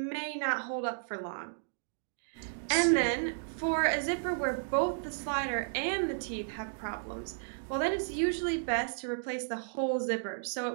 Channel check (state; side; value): silent; left; digital silence